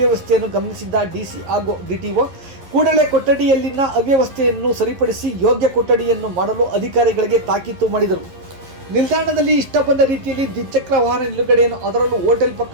ಗಮನಿಸಿದ್ದ ಡಿಸಿ ಹಾಗೂ ಡಿಟಿಒ ಕೂಡಲೇ ಕೊಠಡಿಯಲ್ಲಿನ ಅವ್ಯವಸ್ಥೆಯನ್ನು ಸರಿಪಡಿಸಿ ಯೋಗ್ಯ ಕೊಠಡಿಯನ್ನು ಮಾಡಲು ಅಧಿಕಾರಿಗಳಿಗೆ ತಾಕೀತು ಮಾಡಿದರು. ನಿಲ್ದಾಣದಲ್ಲಿ ಇಷ್ಟ ಬಂದ ರೀತಿಯಲ್ಲಿ ದ್ವಿಚಕ್ರ ವಾಹನ ನಿಲುಗಡೆಯನ್ನು ಅದರಲ್ಲೂ ಹೋಟೆಲ್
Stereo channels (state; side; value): late; left; 11 ms